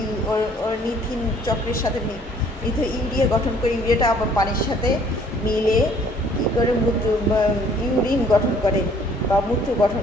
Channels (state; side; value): normal; both; correlation 0.58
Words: অর্নিথিন চক্রের সাথে ইউরিয়া গঠন করে। ইউরিয়াটা আবার পানির সাথে মিলে কী করে ইউরিন গঠন করে বা মূত্র গঠন